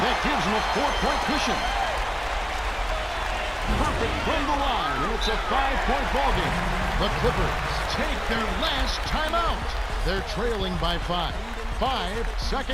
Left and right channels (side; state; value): both; identical; correlation 1.00